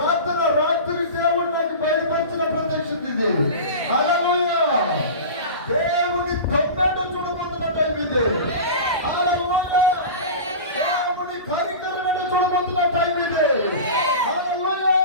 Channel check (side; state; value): both; inverted; correlation -0.31